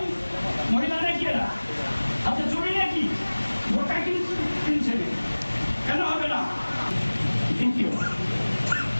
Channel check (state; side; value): inverted; both; correlation -1.00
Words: মহিলা নাকি এরা হাতে চুরি নাকি বোকা কিনছে, কেন হবে না? দ্বিতীয়